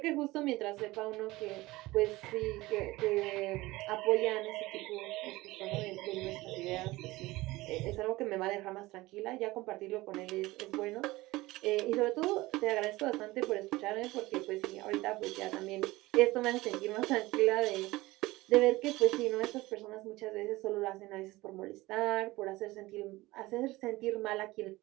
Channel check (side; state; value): left; quieter; 19.5 dB